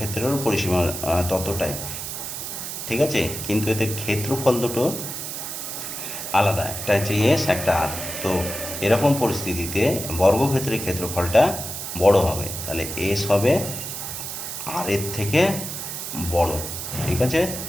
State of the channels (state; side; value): noise; right; hiss, 6 dB below the sound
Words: পরিসীমা ততটাই, ঠিক আছে, কিন্তু এদের ক্ষেত্রফল দুটো আলাদা, একটা হচ্ছে এস, একটা আর। তো এরকম পরিস্থিতিতে বর্গক্ষেত্রের ক্ষেত্রফলটা বড় হবে, তাহলে এস হবে আর এর থেকে বড়, ঠিক আছে,